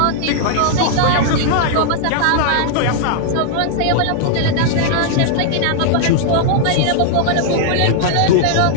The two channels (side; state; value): both; different; correlation -0.01